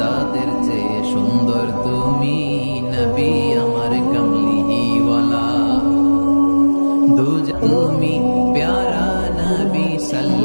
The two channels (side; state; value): both; inverted; correlation -1.00